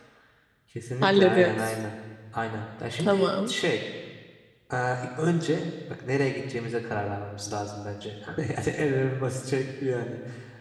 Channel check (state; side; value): identical; both; correlation 1.00